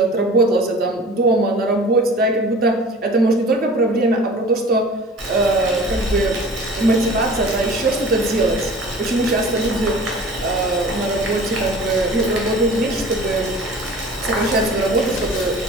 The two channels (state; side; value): normal; both; correlation 0.43